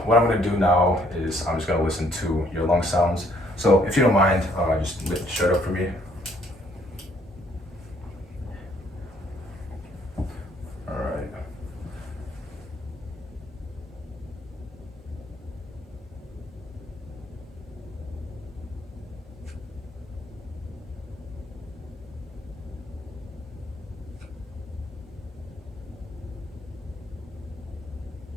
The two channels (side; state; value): both; normal; correlation 0.65